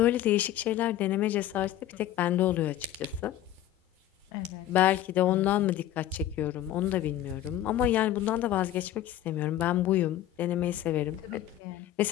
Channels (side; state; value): right; quieter; 12.7 dB